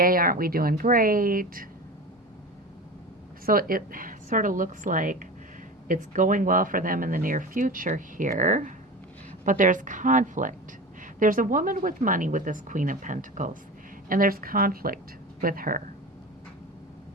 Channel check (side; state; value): both; normal; correlation 0.30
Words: aren't we doing great? So it sort of looks like it's going well for them in the near future here. But there's conflict. There's a woman with money with this Queen of Pentacles. And there's conflict with her.